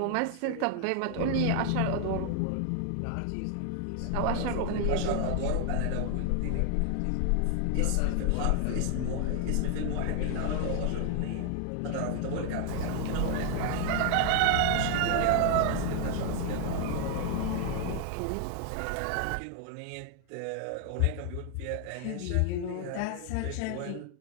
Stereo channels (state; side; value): different; both; correlation 0.00